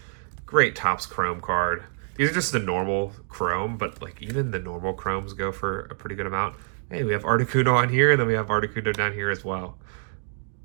great Topps Chrome card. These are just the normal Chrome, but like even the normal Chromes go for a pretty good amount. Hey, we have Articuno on here, and then we have Articuno down here as well.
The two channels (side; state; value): left; silent; 58 dB below the other